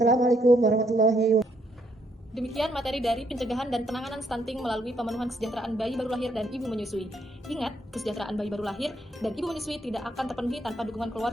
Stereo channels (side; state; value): both; normal; correlation 0.73